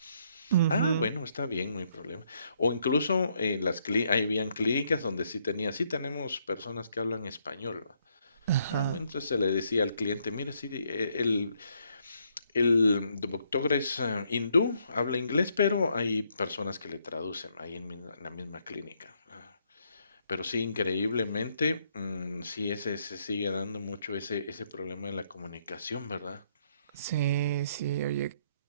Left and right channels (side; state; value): both; inverted; correlation -0.72